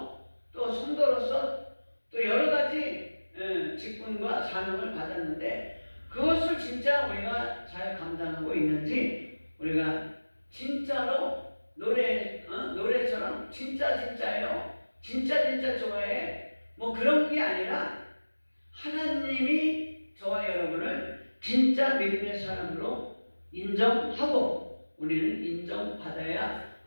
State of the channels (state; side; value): inverted; both; correlation -1.00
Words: 또 성도로서 또 여러 가지 직분과 사명을 받았는데 그것을 진짜 우리가 잘 감당하고 있는지, 우리가 진짜로 노래처럼 진짜예요, 진짜 좋아해, 뭐 그런 게 아니라 하나님이 저와 여러분을 진짜 믿음의 사람으로 인정하고 우리는 인정받아야